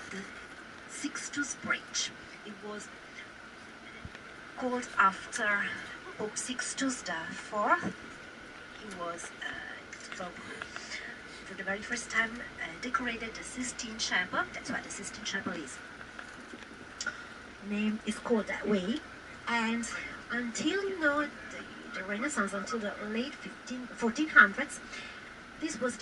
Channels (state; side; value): identical; both; correlation 1.00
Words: the Sixtus Bridge. It was called after Pope Sixtus IV. He was Pope for the very first time decorated the Sistine Chapel. That's why the Sistine Chapel is called that way. And until the Renaissance, until the late 1400s, this was